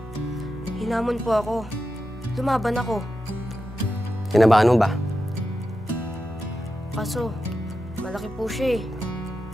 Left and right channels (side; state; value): both; normal; correlation 0.89